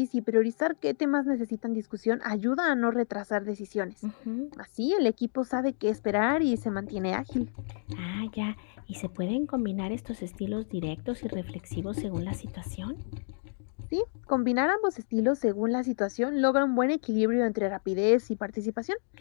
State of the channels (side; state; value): right; silent; digital silence